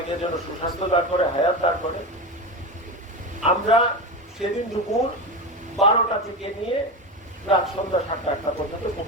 যেন সুস্বাস্থ্য দান করে, হায়াত দান করে। আমরা সেদিন দুপুর 12টা থেকে নিয়ে রাত সন্ধ্যা 7টা পর্যন্ত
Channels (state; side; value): normal; both; correlation 0.21